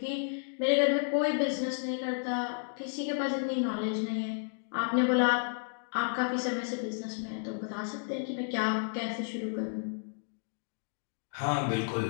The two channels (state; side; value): silent; right; digital silence